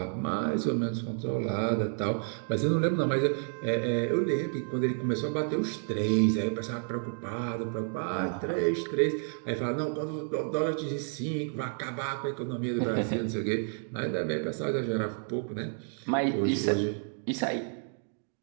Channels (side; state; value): left; silent; 58 dB below the other